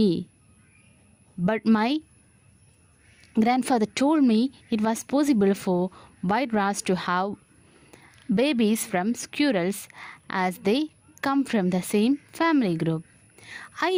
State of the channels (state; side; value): identical; both; correlation 1.00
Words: but my grandfather told me it was possible for white rats to have babies from squirrels as they come from the same family group. I